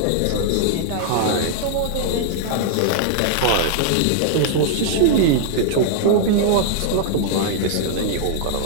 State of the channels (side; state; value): both; different; correlation -0.01